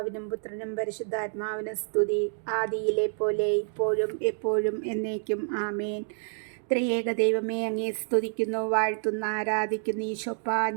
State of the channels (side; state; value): left; silent; 59 dB below the other